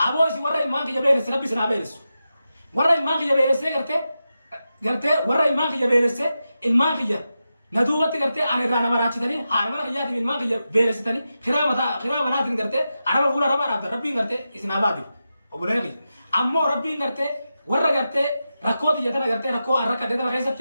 aboo isin warra ilmaan kiyya beelesse rabbi isin haa beelessu warra ilmaan kiyya beelessee gartee warra ilmaan kiyya beelessee ilmaan kiyya na duubatti gartee ana irraa nama raachitanii haadha mana kiyyaatiif ilmaan kiyya beelessitanii kiraa manaatiin gartee araba fuula araba dhaabdan rabbiin gartee isin haa baatu obboleeyyan kiyya ammoo rabbiin gartee warra gartee rakkoo xiyya tana gartee rakkoo harka tana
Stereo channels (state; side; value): inverted; both; correlation -0.90